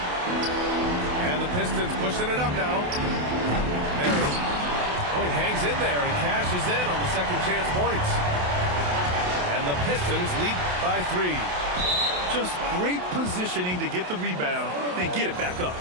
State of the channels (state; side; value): late; left; 28 ms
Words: And the Pistons pushing it up now. Mary. Oh, he hangs in there and cashes in on the second chance points. And the Pistons lead by 3. Just great positioning to get the rebound, then get it back up.